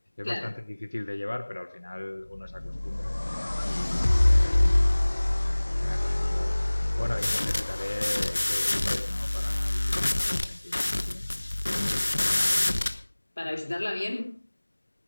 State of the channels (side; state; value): both; inverted; correlation -1.00